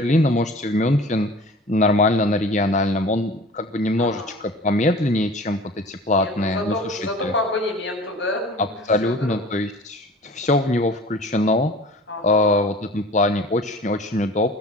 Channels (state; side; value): normal; both; correlation 0.43